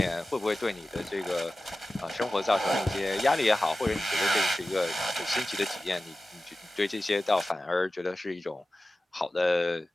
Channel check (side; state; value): both; normal; correlation 0.95